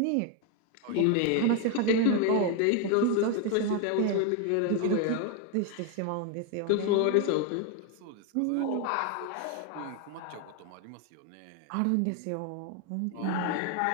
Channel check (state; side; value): different; both; correlation 0.01